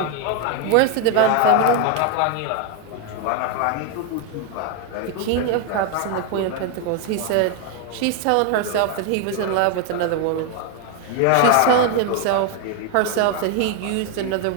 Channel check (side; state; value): both; different; correlation 0.01